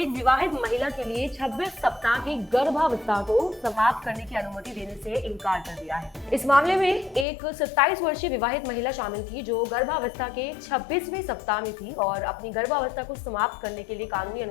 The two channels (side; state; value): right; drops out; at 7.2 s